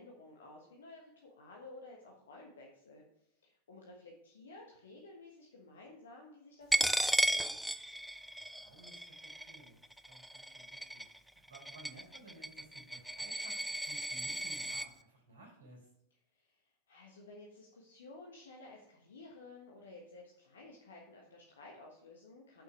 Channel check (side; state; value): both; normal; correlation 0.93